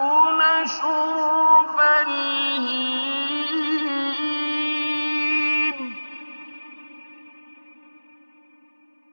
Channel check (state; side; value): inverted; both; correlation -1.00